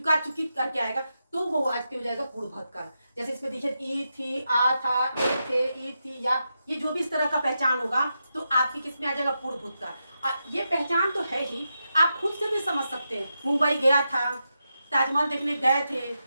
चुकी करके आएगा, तो वो वाक्य हो जाएगा पूर्ण भूतकाल। जैसे इसमें देखिए ई थी, आ था, ए थे, ई थी, या, ये जो भी इस तरह का पहचान होगा तो आपकी किस में आ जाएगा, पूर्ण भूतकाल। ये पहचान तो है ही, आप खुद से भी समझ सकते हैं। मुंबई गया था, ताजमहल देखने गए थे,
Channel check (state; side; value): inverted; both; correlation -0.87